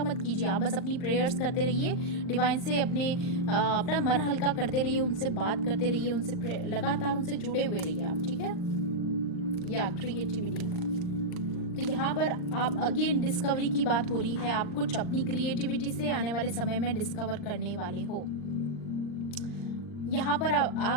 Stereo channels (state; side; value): late; right; 40 ms